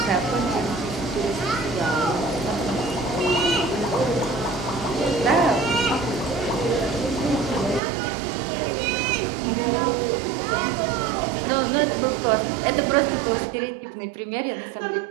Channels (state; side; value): drops out; left; at 7.8 s